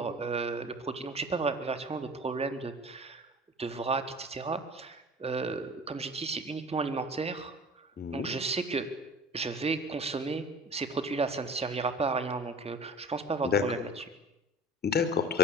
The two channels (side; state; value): both; normal; correlation 0.41